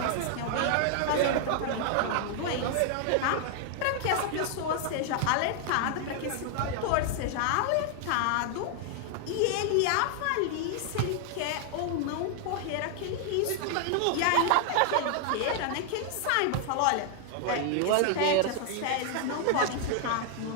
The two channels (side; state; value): both; different; correlation 0.00